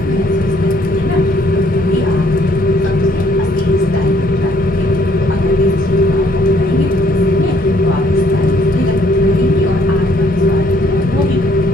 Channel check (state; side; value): normal; both; correlation 0.64